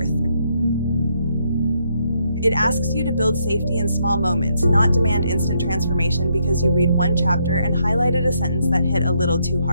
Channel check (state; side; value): inverted; both; correlation -0.75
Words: It asks you to build safety in small moments, not demand instant transformation because you read one chapter and highlighted a sentence that hit a little too